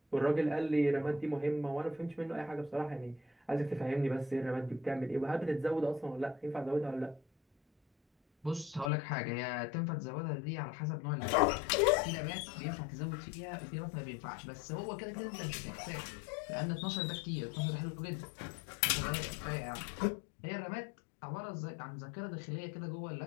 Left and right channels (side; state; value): right; drops out; at 8.9 s